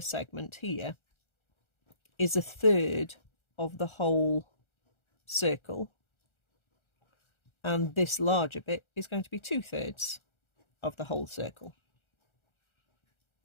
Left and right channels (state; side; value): late; right; 1.3 ms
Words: here is a third of the whole circle, and this larger bit is going to be 2/3 of the whole circle.